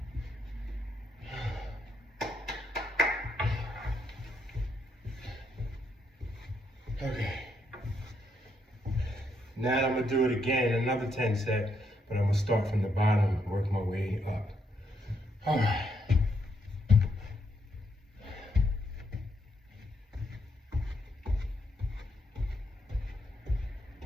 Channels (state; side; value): normal; both; correlation 0.76